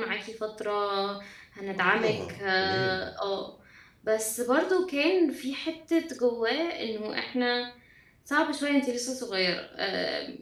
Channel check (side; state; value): both; identical; correlation 1.00